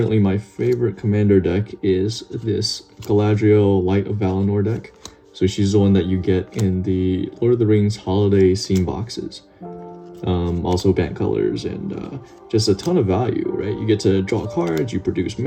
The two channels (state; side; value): identical; both; correlation 1.00